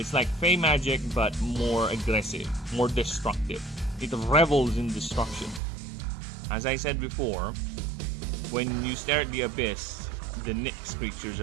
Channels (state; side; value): drops out; left; at 5.6 s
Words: like Fey magic, but more aggressive, more destructive. It revels in destruction. As I said before, when you stare at the abyss, the Nyx creatures